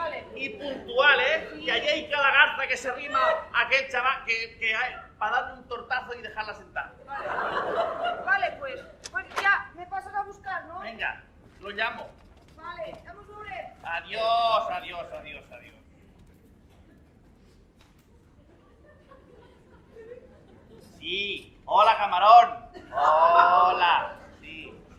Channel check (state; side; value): identical; both; correlation 1.00